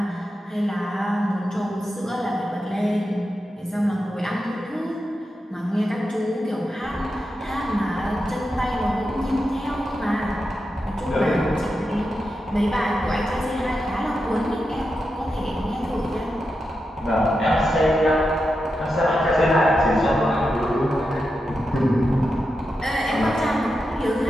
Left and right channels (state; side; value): normal; both; correlation 0.88